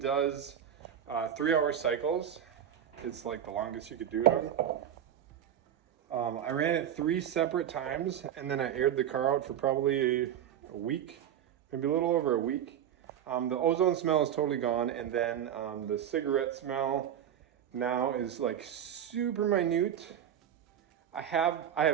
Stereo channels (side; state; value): left; quieter; 9.8 dB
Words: 3-hour cycles. It's like the longest you could do it on. I ran it 3 separate times, and then I aired the car out for probably a week, maybe a little over a week. The ozone smell is totally gone, and then the cigarette smell now is like super minute. I have